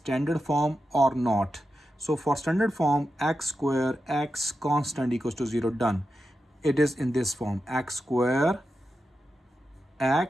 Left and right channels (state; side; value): normal; both; correlation 0.90